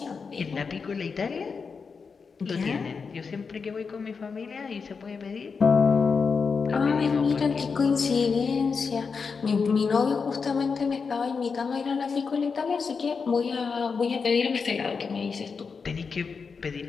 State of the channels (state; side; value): quieter; right; 5.3 dB